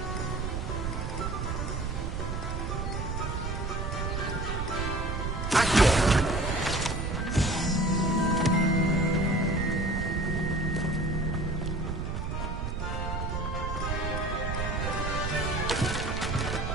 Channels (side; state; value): right; noise; rumble, 2 dB below the sound